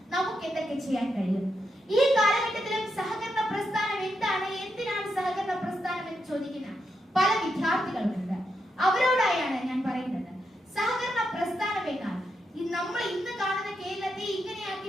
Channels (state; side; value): normal; both; correlation 0.83